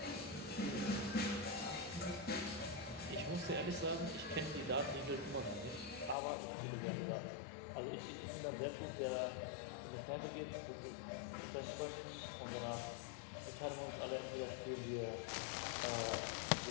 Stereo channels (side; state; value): right; drops out; at 6.2 s